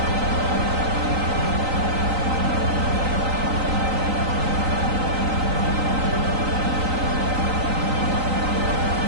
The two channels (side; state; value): left; late; 3.9 ms